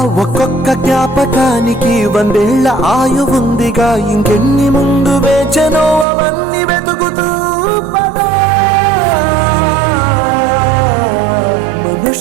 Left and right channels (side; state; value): left; drops out; at 6.1 s